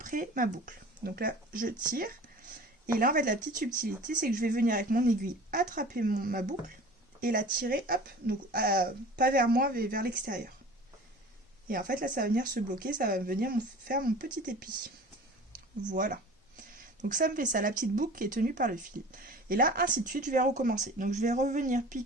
ma boucle. Donc là je tire, et là en fait la petite subtilité c'est que je vais venir avec mon aiguille attraper ma boucle et la tirer hop, donc pas vers moi mais vers l'extérieur. Et en fait là ça va venir se bloquer, ça va venir faire mon petit épi. Voilà. Donc ça me fait ça, la petite boucle qui est tenue par le fil. Et là, ainsi de suite, je vais recommencer. Donc je vais revenir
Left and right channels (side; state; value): both; normal; correlation 0.41